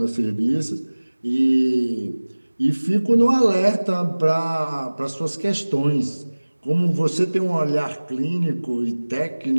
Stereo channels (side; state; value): both; inverted; correlation -1.00